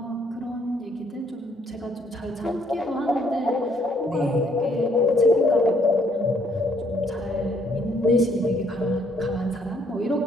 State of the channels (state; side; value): normal; both; correlation 0.67